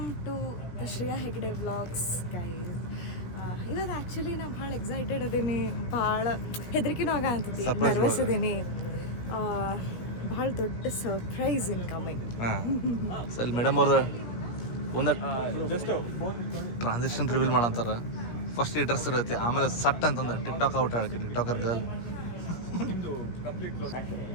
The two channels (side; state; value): right; late; 16 ms